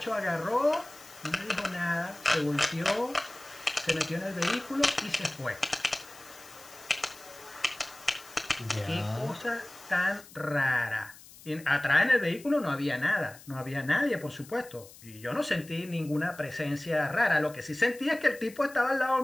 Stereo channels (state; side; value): noise; left; hiss, 20 dB below the sound